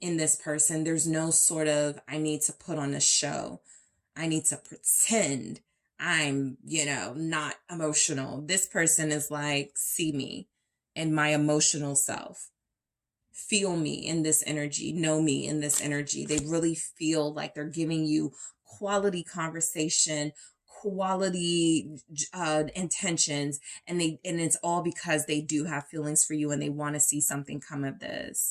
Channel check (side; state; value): both; identical; correlation 1.00